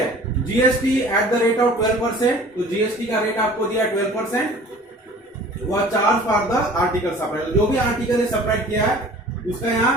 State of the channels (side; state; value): both; normal; correlation 0.46